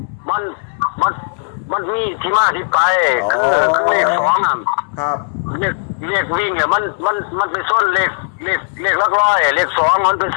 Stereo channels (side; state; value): right; silent; digital silence